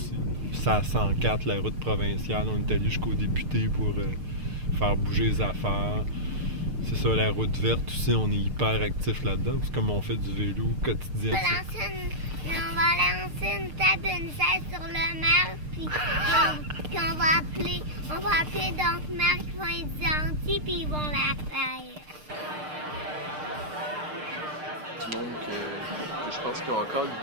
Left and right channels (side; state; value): left; late; 6.6 ms